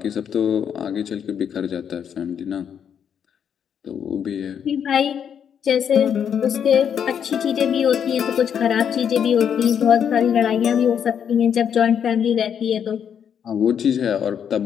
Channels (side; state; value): right; quieter; 8.2 dB